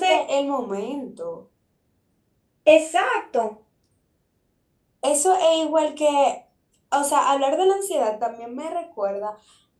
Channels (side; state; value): both; identical; correlation 1.00